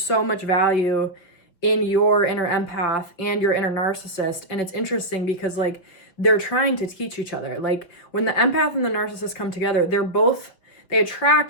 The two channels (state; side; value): late; right; 6.0 ms